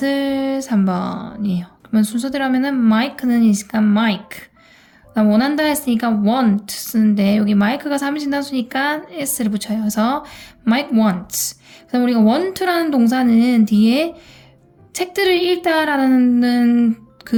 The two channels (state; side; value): identical; both; correlation 1.00